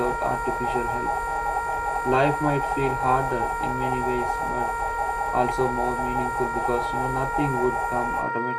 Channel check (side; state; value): both; identical; correlation 1.00